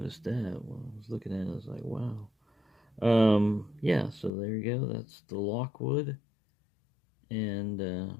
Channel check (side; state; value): right; drops out; at 4.3 s